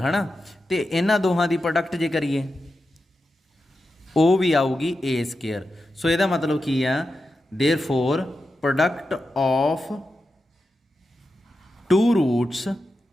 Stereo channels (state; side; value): normal; both; correlation 0.90